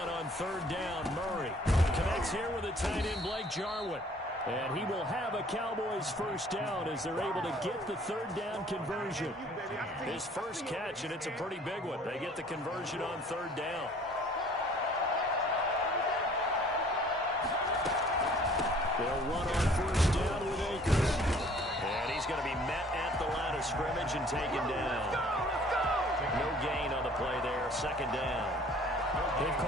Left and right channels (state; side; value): normal; both; correlation 0.55